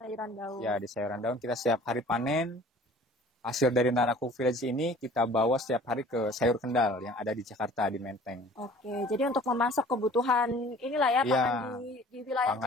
Ya, di sayuran daun kita setiap hari panen. Hasil dari Nara Kuku Village ini kita bawa setiap hari ke Sayur Kendal yang ada di Jakarta, di Menteng. Jadi untuk memasok kebutuhan inilah ya, pangan di wilayah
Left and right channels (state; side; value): normal; both; correlation 0.49